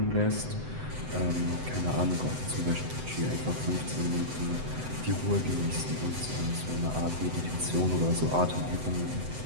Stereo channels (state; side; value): late; left; 7.9 ms